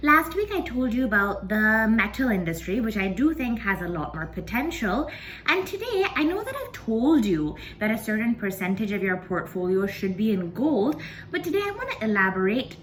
Last week I told you about the metal industry, which I do think has a lot more potential. And today I know that I've told you that a certain percentage of your portfolio should be in gold, but today I want to elaborate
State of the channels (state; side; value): identical; both; correlation 1.00